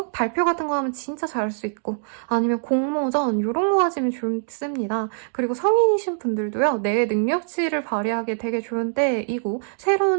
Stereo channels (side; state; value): left; silent; digital silence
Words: 발표 같은 거 하면 진짜 잘할 수 있고, 아니면 공모전 이런 거 하시면 좋습니다. 그리고 성인이신 분들도요, 내 능력치를 발휘하기 되게 좋은 때이고,